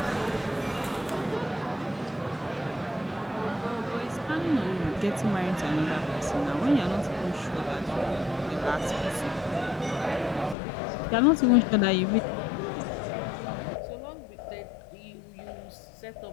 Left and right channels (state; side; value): drops out; right; at 10.6 s